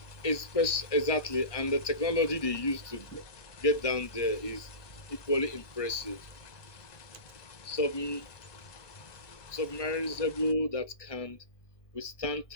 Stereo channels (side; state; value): right; late; 1.2 ms